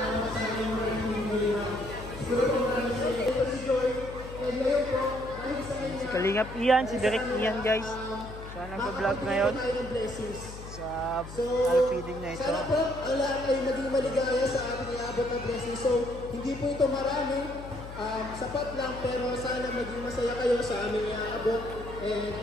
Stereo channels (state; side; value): noise; left; hum, 12 dB below the sound